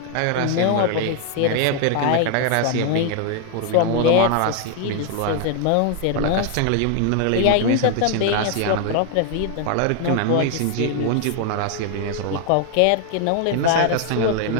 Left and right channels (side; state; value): both; different; correlation 0.00